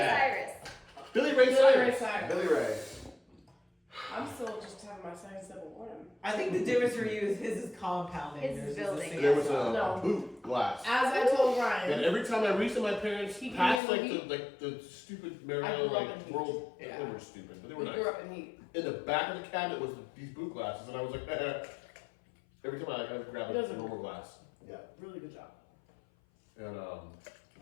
Cyrus. Billy Ray Cyrus. Billy Ray. I'm still just having my second sip of wine. I think the difference for you is his is compounding. His yours is the building. single. There was No. a boot glass. As I told And Ryan, every time I reached to my parents, He past gave like me the stupid I Mariana grew up in like heat. world, Yeah. they were stupid, but they were we nice. grew up in heat. In the back of the cabinet was these boot glasses, and I was like, every time I grab It a doesn't- normal glass, Yeah. Really good job. and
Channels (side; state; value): right; drops out; at 13.8 s